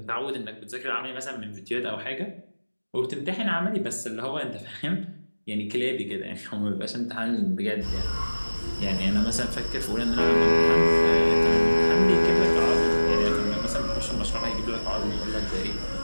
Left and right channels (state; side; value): inverted; both; correlation -1.00